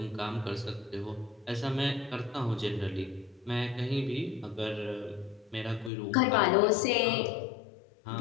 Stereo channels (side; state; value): right; drops out; at 5.9 s